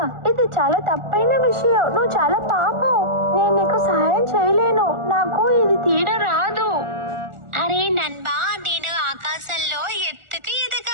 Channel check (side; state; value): left; late; 1.4 ms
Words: ఇది చాలా తప్పైన విషయం. నువ్వు చాలా పాపం. నేను నీకు సహాయం చేయలేను, నాకు ఇది తీయడం రాదు. అరే నన్బా, నేను ఆకాశంలో ఎత్తుకు